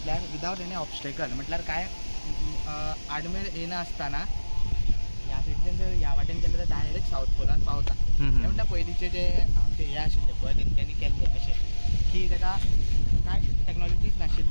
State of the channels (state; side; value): inverted; both; correlation -1.00